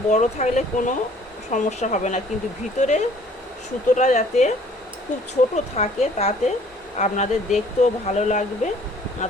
বড় থাকলে কোনো সমস্যা হবে না, কিন্তু ভিতরে সুতোটা যাতে খুব ছোট থাকে, তাতে আপনাদের দেখতেও ভালো লাগবে, না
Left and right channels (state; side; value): normal; both; correlation 0.56